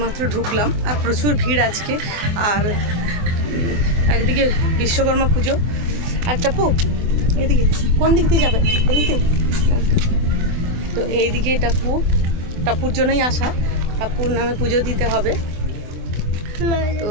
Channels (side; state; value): left; late; 24 ms